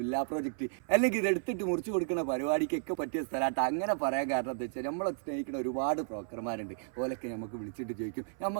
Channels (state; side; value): silent; left; 56 dB below the other